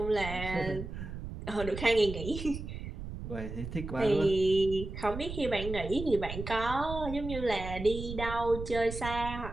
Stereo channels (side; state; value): right; noise; rumble, 8 dB below the sound